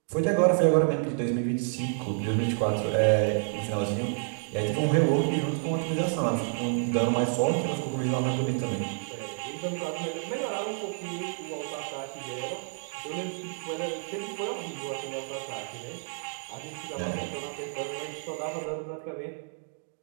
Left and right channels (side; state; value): left; silent; 58 dB below the other